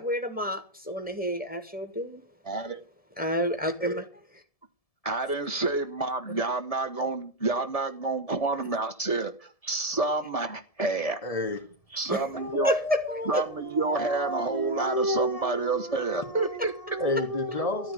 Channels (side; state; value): right; late; 1.7 ms